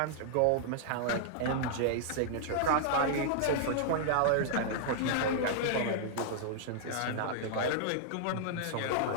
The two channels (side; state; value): both; different; correlation -0.01